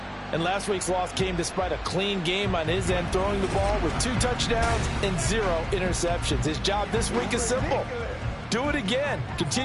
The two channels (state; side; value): identical; both; correlation 1.00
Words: And last week's loss came despite a clean game on his end, throwing the ball with 2 touchdowns and 0 interceptions. His job this week is simple. Do it again.